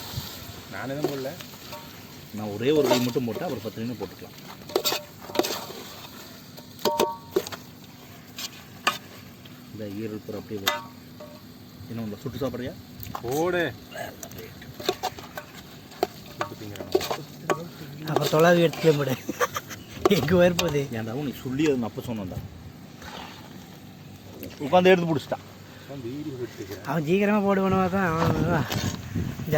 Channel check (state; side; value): identical; both; correlation 1.00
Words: நான் எதுவும் போடல. நான் ஒரே ஒரு கை மட்டும் போட்டேன். அப்புறம் 10 நிமிஷம் போட்டுக்கலாம். இந்த ஈரல் பூரா அப்படியே போட்டு என்ன உங்களை சுட்டு சாப்பிட்றியா? போடு. அப்புறம் தொலாவி எடுத்துக்க முடியாது. எங்கே வரப்போகுது? ஏன்டாவும் நீ சொல்லி அது நான் அப்போ சொன்னேன்டா. உட்காந்து எடுத்து பிடிச்சிட்டான். அவன் சீக்கிரமாக போடுவானவா தான். அவன்